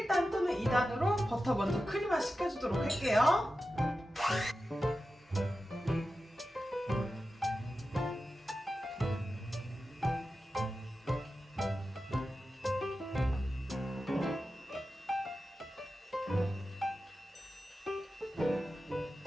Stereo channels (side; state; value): both; normal; correlation 0.92